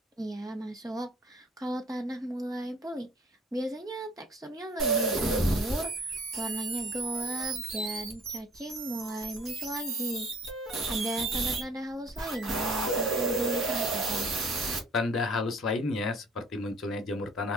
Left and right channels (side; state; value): both; normal; correlation 0.53